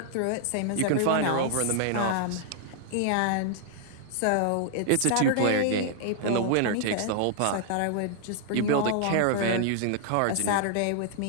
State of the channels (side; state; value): both; different; correlation -0.01